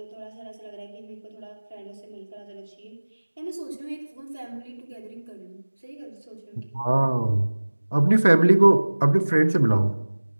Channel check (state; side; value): inverted; both; correlation -1.00